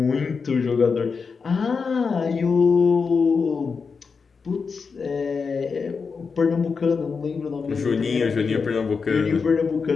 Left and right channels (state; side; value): quieter; right; 5.2 dB